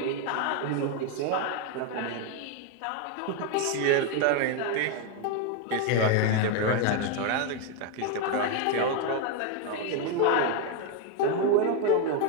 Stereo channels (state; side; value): different; both; correlation 0.01